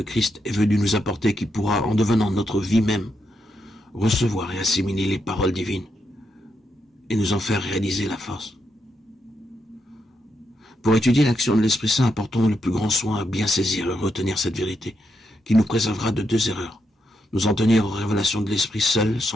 est venu nous apporter, qui pourra, en devenant notre vie même, recevoir et assimiler les paroles divines et nous en faire réaliser la force. Pour étudier l'action de l'Esprit Saint, apportons le plus grand soin à bien saisir et retenir cette vérité, qui nous préservera de deux erreurs. Nous en tenir aux révélations de l'Esprit seul,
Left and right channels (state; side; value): normal; both; correlation 0.82